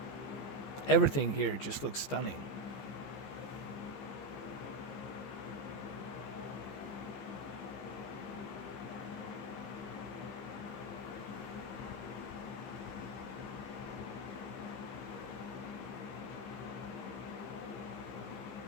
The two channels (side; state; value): right; late; 15 ms